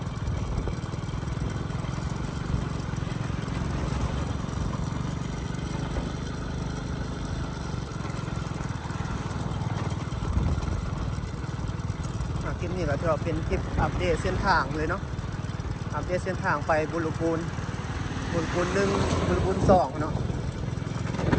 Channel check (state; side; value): identical; both; correlation 1.00